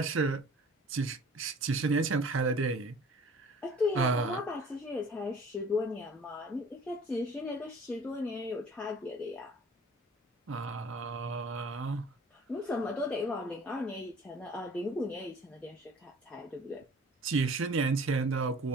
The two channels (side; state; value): both; normal; correlation 0.49